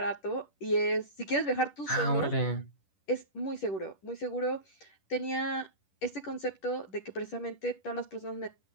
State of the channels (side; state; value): right; late; 10 ms